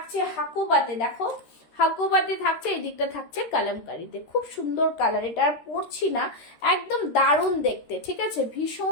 হাকুবাতে, দেখো হাকুবাতে থাকছে, এই দিকটা থাকছে কালামকারীতে। খুব সুন্দর কালার, এটা আর পরছি না, একদম দারুণ দেখতে, ঠিক আছে?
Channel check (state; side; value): late; right; 13 ms